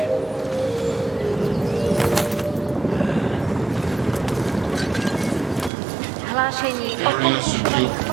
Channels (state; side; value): drops out; left; at 5.7 s